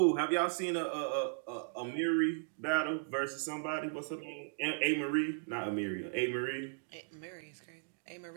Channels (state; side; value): silent; left; digital silence